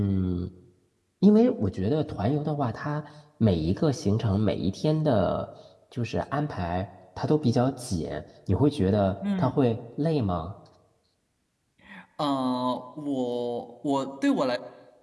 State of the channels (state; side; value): identical; both; correlation 1.00